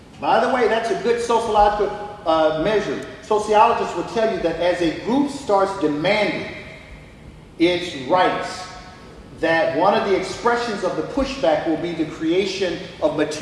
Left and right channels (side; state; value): both; identical; correlation 1.00